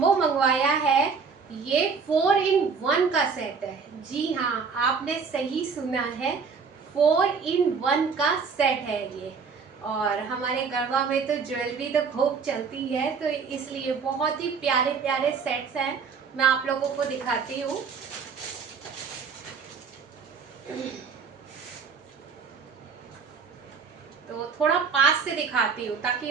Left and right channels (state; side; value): quieter; left; 5.5 dB